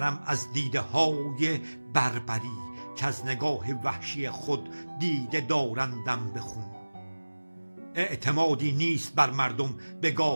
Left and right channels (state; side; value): inverted; both; correlation -1.00